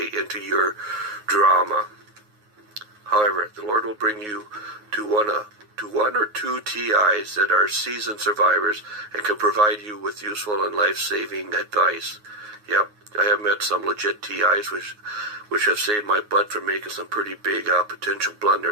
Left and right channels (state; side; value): late; left; 9.5 ms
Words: into your drama. However, the Lord will bring you to one or two TIs that are seasoned survivors and can provide you with useful and life-saving advice. Yep, I have met some legit TIs which have saved my butt from making some pretty big potential